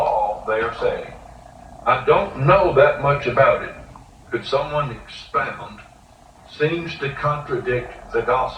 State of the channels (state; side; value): identical; both; correlation 1.00